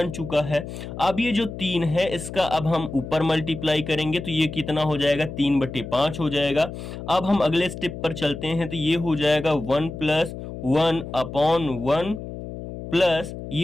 चुका है। अब ये जो 3 है इसका अब हम ऊपर मल्टीप्लाई करेंगे तो ये कितना हो जाएगा? 3/5 हो जाएगा। अब हम अगले स्टेप पर चलते हैं तो ये हो जाएगा 1 + 1/1 प्लस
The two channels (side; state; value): left; noise; hum, 10 dB below the sound